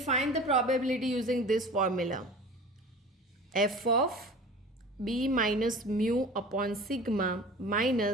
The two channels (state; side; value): normal; both; correlation 0.39